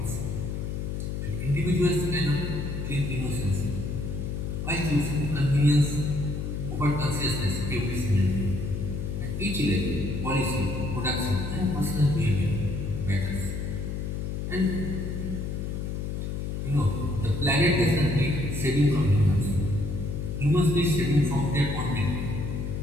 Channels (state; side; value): noise; left; hum, 3 dB below the sound